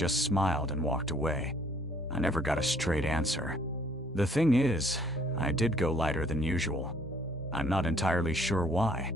smiled and walked away. I never got a straight answer. The thing is, I did go lighter than usual. I'm not entirely sure why.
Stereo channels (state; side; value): normal; both; correlation 0.61